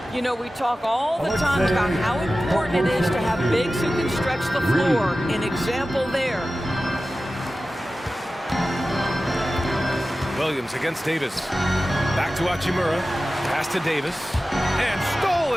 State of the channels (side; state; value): both; normal; correlation 0.95